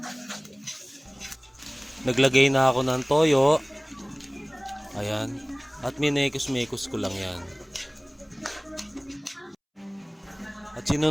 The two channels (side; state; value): both; identical; correlation 1.00